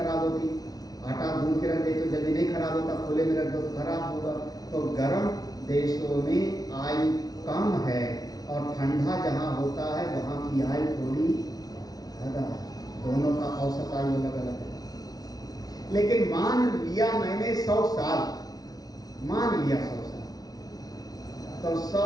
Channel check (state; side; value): late; right; 0.19 ms